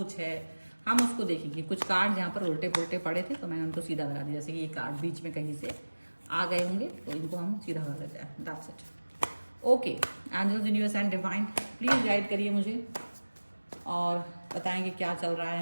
है, हम उसको देखेंगे। कुछ कार्ड यहाँ पर उल्टे पुल्टे पड़े थे तो मैंने उनको सीधा लगा दिया। जैसे कि ये कार्ड बीच में कहीं से आ गए होंगे तो इनको हम सीधा कर देते हैं। That's it. Okay, angels, universe and divine, please guide करिए मुझे और बताएंगे क्या चल रहा है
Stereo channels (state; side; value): inverted; both; correlation -1.00